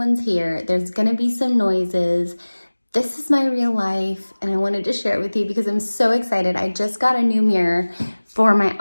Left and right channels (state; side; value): inverted; both; correlation -1.00